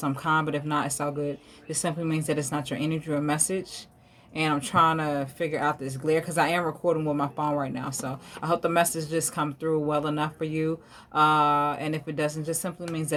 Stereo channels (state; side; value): identical; both; correlation 1.00